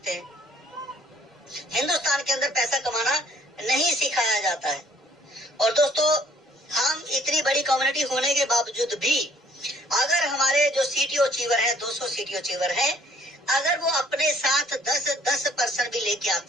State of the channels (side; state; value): both; normal; correlation 0.60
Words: हिंदुस्तान के अंदर पैसा कमाना नहीं सिखाया जाता है। और दोस्तों हम इतनी बड़ी कम्युनिटी होने के बावजूद भी अगर हमारे जो CTO अचीवर है, 200 CTO अचीवर है, अगर वो अपने साथ 10% भी लेके